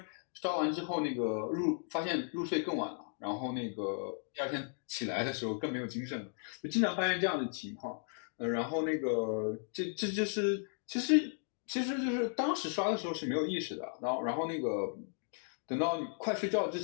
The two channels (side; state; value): right; silent; 54 dB below the other